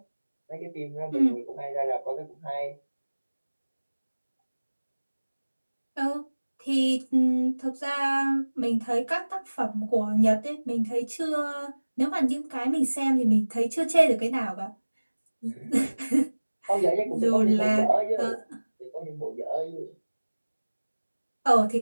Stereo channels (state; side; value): inverted; both; correlation -1.00